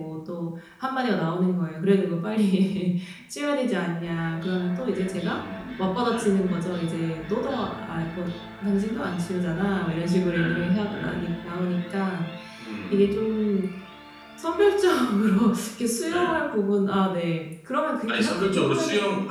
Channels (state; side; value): identical; both; correlation 1.00